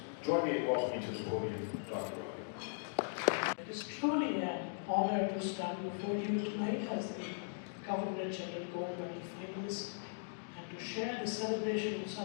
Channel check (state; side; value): silent; right; digital silence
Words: join me in welcoming to the podium Dr. Ravi. It is truly an honor to stand before you tonight as the Governor General Gold Medal finalist and to share the celebration with